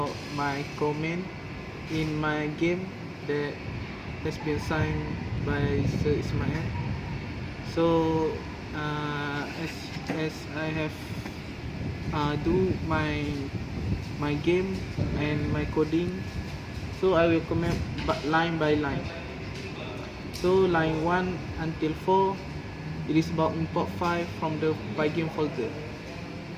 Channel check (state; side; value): identical; both; correlation 1.00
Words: my comment in my game that has been signed by Sir Ismail. So, as I have do my game and my coding, so I will comment line by line. So line 1 until 4, it is about import file from the Pygame folder.